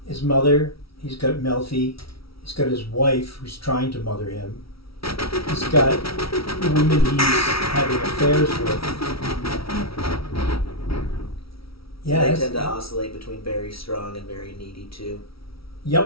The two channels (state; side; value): late; right; 0.75 ms